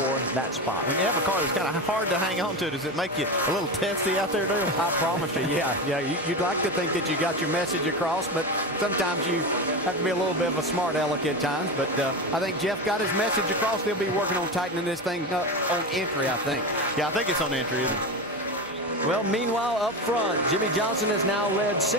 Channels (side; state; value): right; noise; hum, 29 dB below the sound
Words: that spot. When you have a car that's kind of hard to hang on to, does it make you a little testy out there, Dale? I promise you, yeah. You'd like to think that you got your message across, but sometimes you have to be a little bit of a smart aleck at times. But I think Jeff got his message across. They'll be working on tightening this thing up on entry, I think. Yeah, I think it's on entry, isn't it? Well, meanwhile, up front, Jimmie Johnson has now led